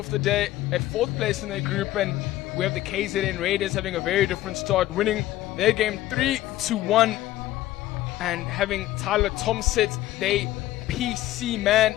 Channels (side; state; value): right; quieter; 15.1 dB